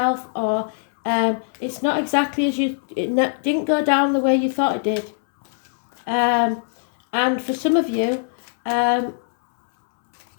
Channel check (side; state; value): right; silent; 65 dB below the other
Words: or it's not exactly as it didn't go down the way you thought it did. And for some of you, the